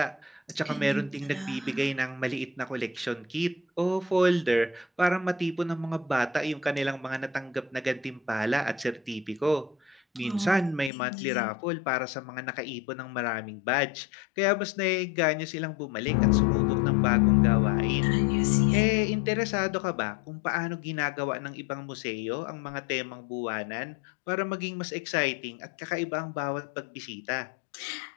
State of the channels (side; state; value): right; drops out; at 10.9 s